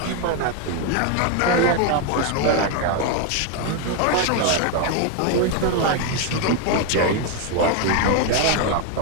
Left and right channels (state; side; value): different; both; correlation 0.01